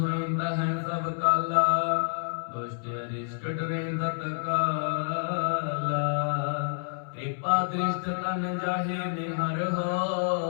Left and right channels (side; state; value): right; silent; 59 dB below the other